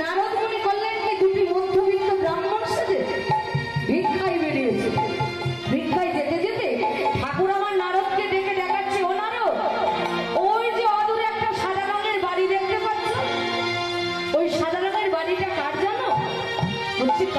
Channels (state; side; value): identical; both; correlation 1.00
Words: নারদ মনে করলেন কি দুটি মধ্যবিত্ত ব্রাহ্মণ সেজে ভিক্ষায় বেরিয়েছে। ভিক্ষায় যেতে যেতে ঠাকুর আমার নারদকে ডেকে দেখাচ্ছে, ও নারদ, ওই যে অদূরে একটা সাদা রঙের বাড়ি দেখতে পাচ্ছ, ওই সাদা রঙের বাড়িটা কার জানো? বলছি